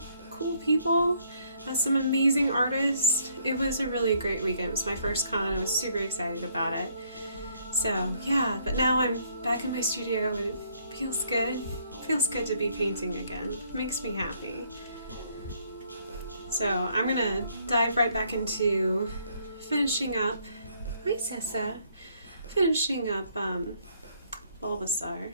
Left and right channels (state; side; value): inverted; both; correlation -0.68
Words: people, some amazing artists. It was a really great weekend. It was my first con. I was super excited about it. So yeah, but now I'm back in my studio and it feels good. It feels good to be painting again. It makes me happy. So I'm gonna dive right back into finishing up, hi Sessa, finishing up Bulbasaur.